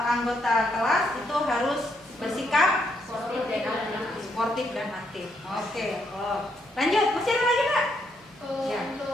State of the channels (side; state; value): right; noise; hum, 29 dB below the sound